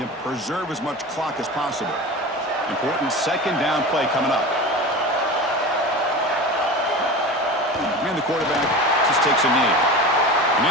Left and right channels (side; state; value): both; normal; correlation 0.31